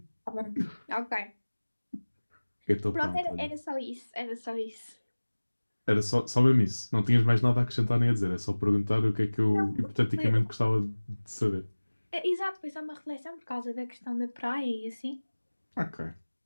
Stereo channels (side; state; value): both; inverted; correlation -1.00